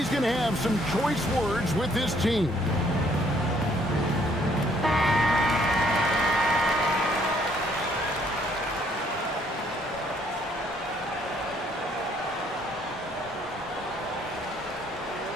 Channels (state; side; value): normal; both; correlation 0.65